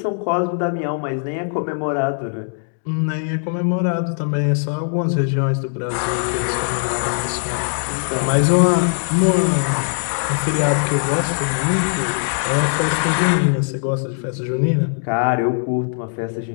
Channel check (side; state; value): right; silent; digital silence